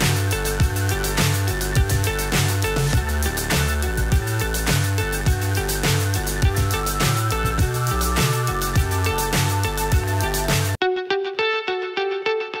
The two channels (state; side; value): identical; both; correlation 1.00